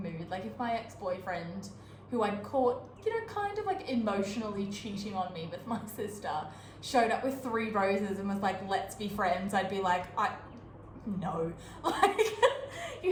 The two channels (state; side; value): identical; both; correlation 1.00